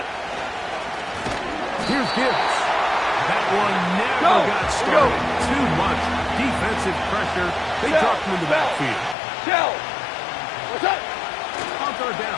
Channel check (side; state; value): right; drops out; at 9.2 s